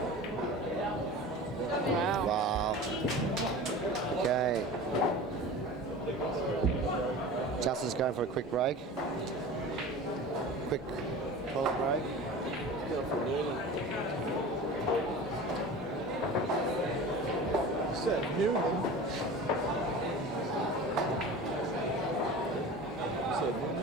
Wow. Okay. Justin's going for a quick break. Quick toilet break. Said Newman. Said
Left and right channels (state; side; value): normal; both; correlation 0.35